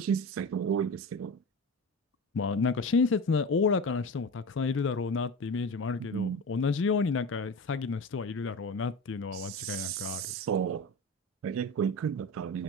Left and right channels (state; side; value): normal; both; correlation 0.28